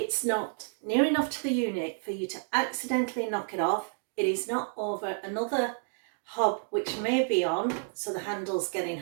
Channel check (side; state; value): left; silent; 58 dB below the other